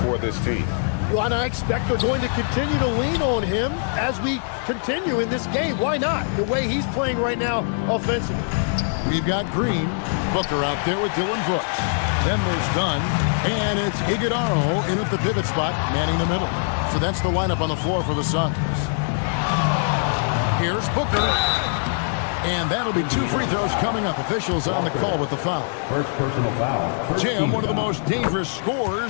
for this team. Well, and I expect they're going to continue to lean on him as we continue in this game. Why not? The way he's playing right now offensively. We've got Green, Booker out there with Dylan Brooks. Then there's Dunn, and it's Iguodala in at the pivot spot, manning the middle. So that's the lineup on the floor for the Suns. Here's Booker. And that'll be 2 free throws coming up. Officials on the call with the foul. First personal foul. Jim, one of the most dangerous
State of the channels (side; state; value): right; silent; 62 dB below the other